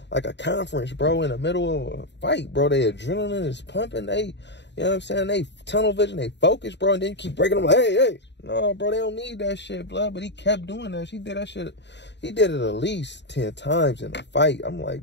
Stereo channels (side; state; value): right; late; 0.51 ms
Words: conference, bro, in the middle of a fight, bro. Their adrenaline is pumping. They, you know what I'm saying? They tunnel vision, they focus, bro, and then you keep breaking them like, hey. No, bro, they don't need that shit, blood. But he kept doing that. He did that shit. He did it at least 10 times in a fight. I'm